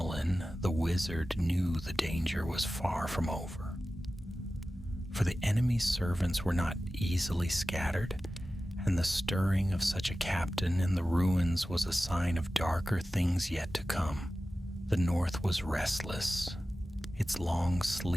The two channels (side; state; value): both; normal; correlation 0.95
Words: the wizard knew the danger was far from over. For the enemy's servants were not easily scattered, and the stirring of such a captain in the ruins was a sign of darker things yet to come. The north was restless, its long